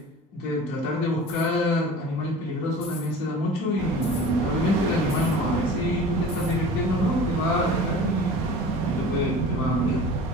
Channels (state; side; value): normal; both; correlation 0.40